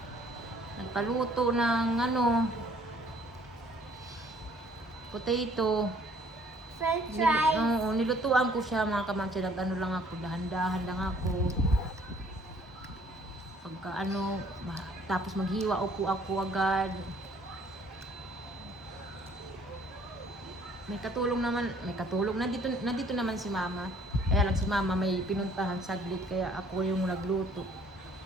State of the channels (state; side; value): normal; both; correlation 0.59